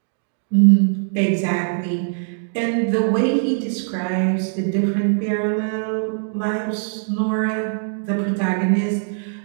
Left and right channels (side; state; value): left; silent; digital silence